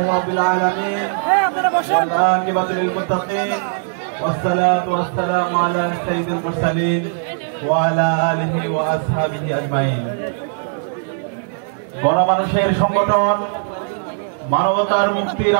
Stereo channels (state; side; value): silent; left; digital silence